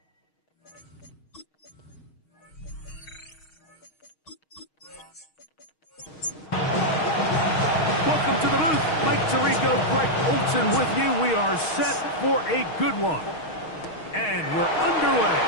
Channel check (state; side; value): late; right; 6.4 ms